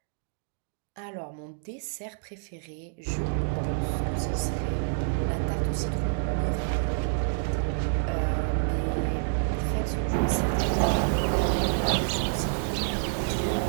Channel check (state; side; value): silent; left; digital silence